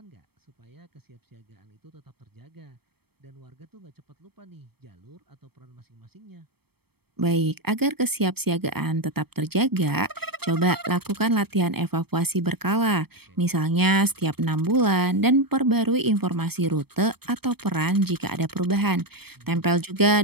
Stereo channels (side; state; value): left; late; 0.97 ms